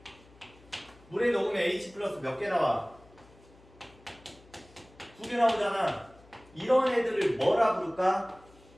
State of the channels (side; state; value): left; noise; hum, 26 dB below the sound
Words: 물에 녹으면 H 플러스 몇 개 나와? 두 개 나오잖아. 이런 애들을 뭐라 부를까?